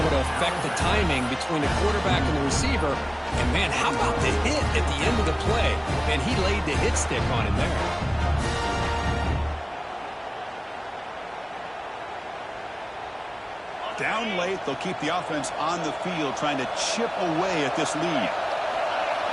to affect the timing between the quarterback and the receiver. And, man, how about the hit at the end of the play? Man, he laid the hit stick on him there. Down late, they'll keep the offense on the field trying to chip away at this lead.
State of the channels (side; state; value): both; identical; correlation 1.00